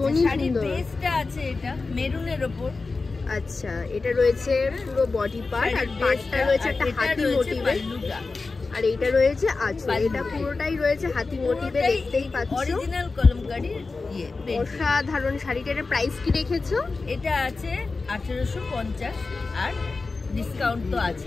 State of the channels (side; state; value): right; quieter; 3.9 dB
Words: সুন্দর। বেসটা আছে এটা মেরুনের উপর। আচ্ছা, এটা রয়েছে পুরো বডি পার্ট, আর পার্টটা রয়েছে একটা হাতি মোটিভে, আর এইটা রয়েছে আঁচল। এটা পুরোটাই রয়েছে হাতি মোটিভে, দেখতেই পাচ্ছ। অরিজিনাল কলমকারি। অসাধারণ শাড়িটা। এর প্রাইস কি রেখেছো? এটা আছে 1850, আর ডিসকাউন্ট তো